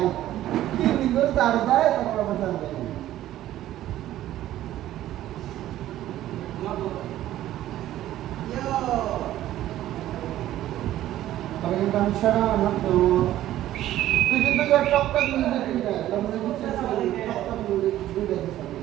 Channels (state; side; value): quieter; left; 13.5 dB